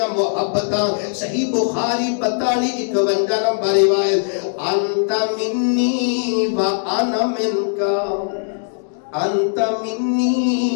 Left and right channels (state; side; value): silent; right; digital silence